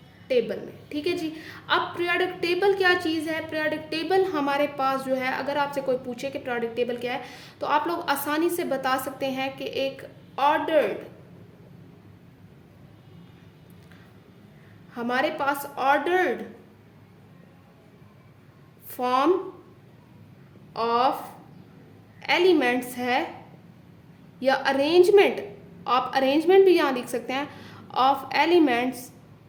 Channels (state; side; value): identical; both; correlation 1.00